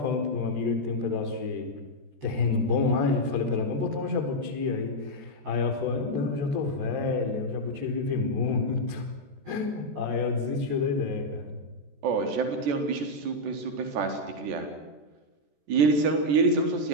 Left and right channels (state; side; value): late; left; 14 ms